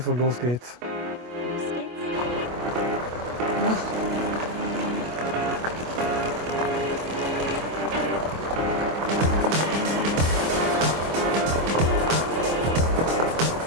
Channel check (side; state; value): left; late; 25 ms